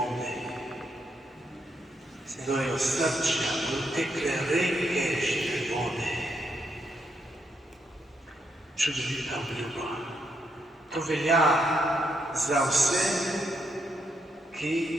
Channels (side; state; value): both; normal; correlation 0.78